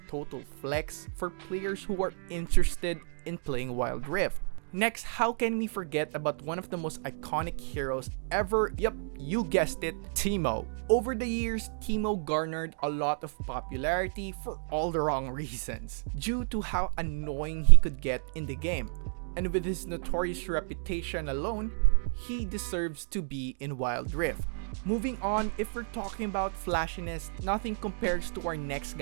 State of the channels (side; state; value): left; silent; digital silence